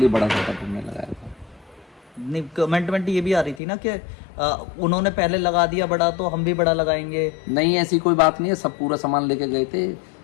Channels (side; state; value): right; drops out; at 3.6 s